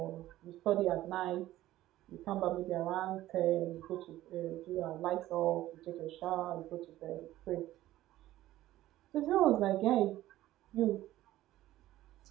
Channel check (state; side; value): quieter; left; 15.0 dB